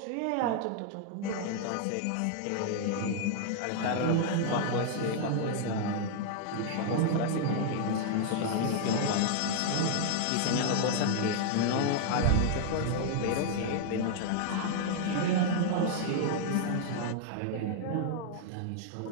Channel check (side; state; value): both; different; correlation 0.00